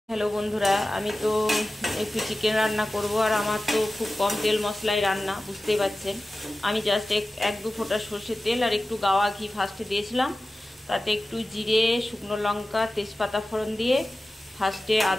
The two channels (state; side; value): normal; both; correlation 0.95